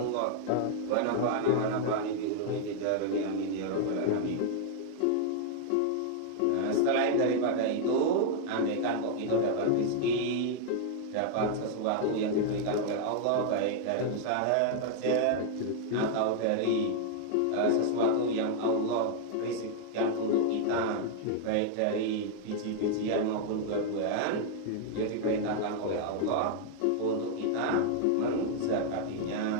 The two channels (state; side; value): different; both; correlation 0.00